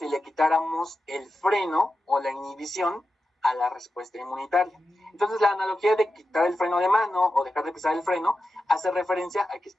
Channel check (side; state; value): both; normal; correlation 0.90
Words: le quitáramos el freno o la inhibición a la respuesta inmunitaria. Entonces, la analogía de quitar el freno de mano o dejar de pisar el freno hace referencia a que